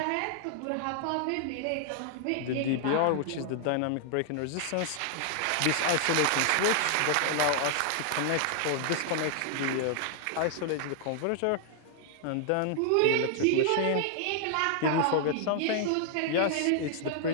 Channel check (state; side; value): different; both; correlation 0.00